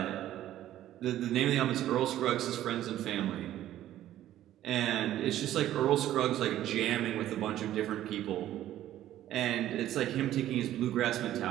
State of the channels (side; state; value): left; quieter; 12.9 dB